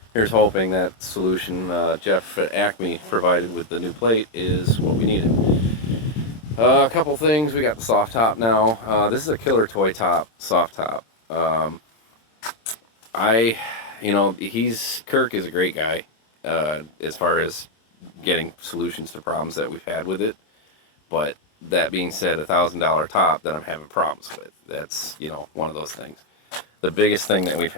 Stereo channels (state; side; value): late; right; 26 ms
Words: here's hoping that solution Jeff at Acme provided with the new plate is what we needed. A couple things. We got the soft top now. This is a killer toy top, soft top. Kirk is a great guy as far as getting solutions to problems that we've had with it. But that being said, $1,000 top that I'm having problems with. That's, one of those things. The biggest thing that we've